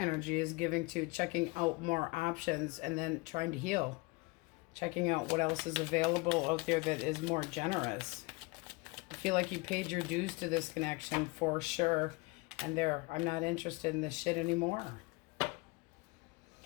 is giving to checking out more options and then trying to heal. Checking out what else is available out there that is more generous. I feel like you paid your dues to this connection for sure. And there, I'm not interested in this shit anymore.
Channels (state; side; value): quieter; right; 25.8 dB